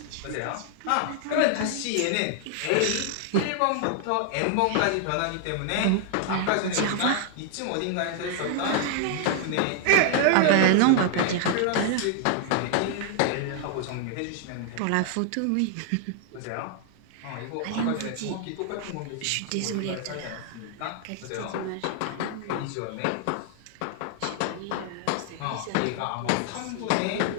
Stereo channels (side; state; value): both; different; correlation 0.00